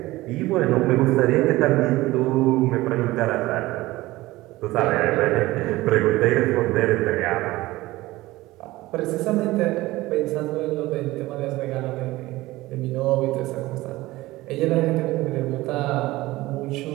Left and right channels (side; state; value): left; quieter; 18.6 dB